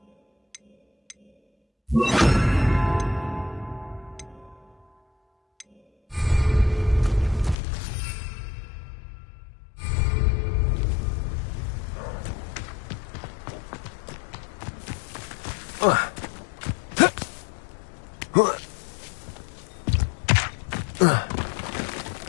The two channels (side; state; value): right; drops out; at 7.6 s